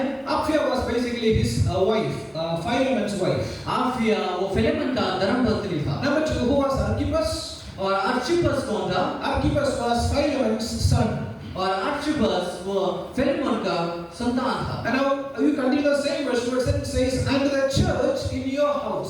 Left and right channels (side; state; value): both; identical; correlation 1.00